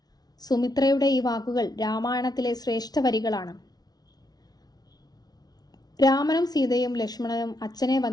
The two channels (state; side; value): late; right; 0.19 ms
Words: സുമിത്രയുടെ ഈ വാക്കുകൾ രാമായണത്തിലെ ശ്രേഷ്ഠ വരികളാണ്. രാമനും സീതയും ലക്ഷ്മണനും അച്ഛനെ